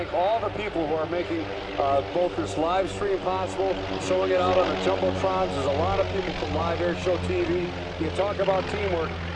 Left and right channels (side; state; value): both; identical; correlation 1.00